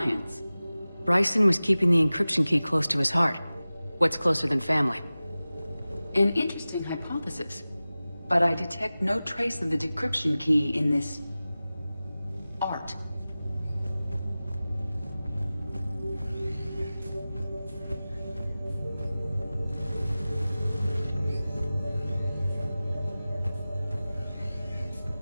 Bryson was keeping the encryption key close to his heart. What's closer than family? An interesting hypothesis. But I detect no trace of the decryption key in this... art.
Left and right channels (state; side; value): inverted; both; correlation -0.97